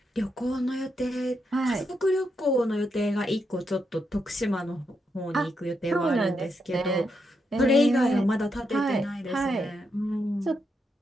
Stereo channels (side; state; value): both; normal; correlation 0.82